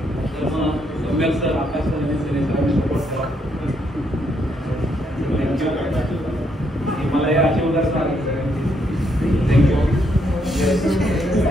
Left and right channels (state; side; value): normal; both; correlation 0.75